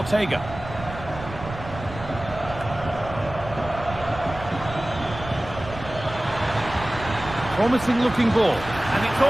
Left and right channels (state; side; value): noise; right; rumble, 12 dB below the sound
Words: Promising looking ball, and it's